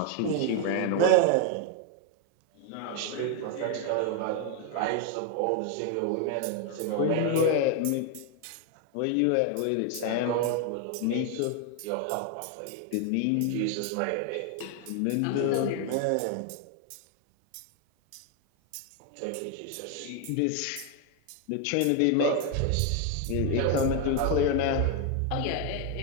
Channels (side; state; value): both; different; correlation 0.01